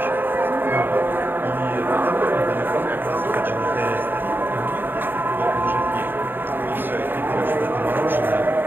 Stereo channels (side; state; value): left; late; 0.094 ms